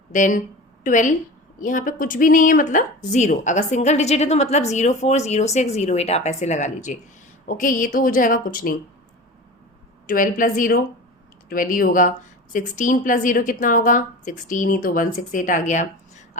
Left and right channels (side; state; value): both; normal; correlation 0.32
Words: देन 12, यहाँ पे कुछ भी नहीं है मतलब 0। अगर सिंगल डिजिट है तो मतलब 04 06 08 आप ऐसे लगा लीजिए। ओके, ये तो हो जाएगा कुछ नहीं। 12 + 0 12 ही होगा। 16 + 0 कितना होगा, 16 ही, तो 168 आ गया।